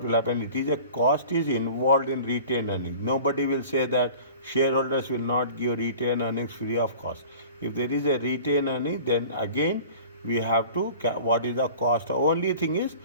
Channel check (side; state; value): both; inverted; correlation -0.43